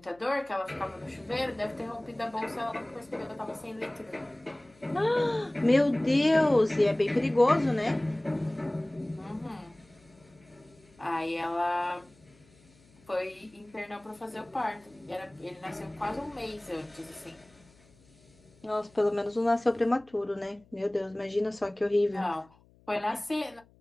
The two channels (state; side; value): noise; left; hum, 29 dB below the sound